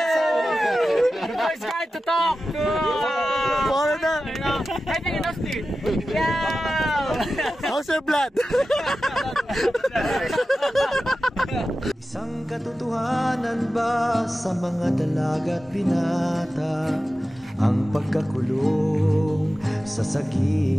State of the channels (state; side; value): normal; both; correlation 0.94